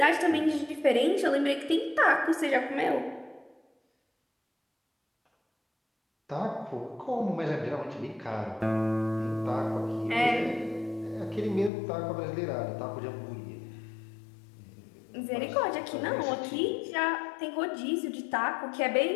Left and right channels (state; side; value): drops out; right; at 11.7 s